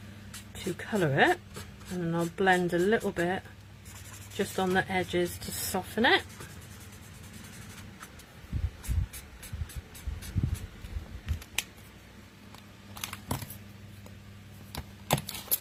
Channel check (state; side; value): identical; both; correlation 1.00